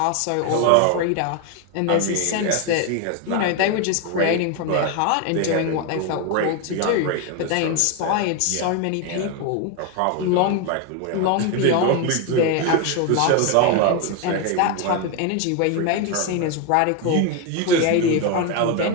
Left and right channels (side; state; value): both; different; correlation 0.02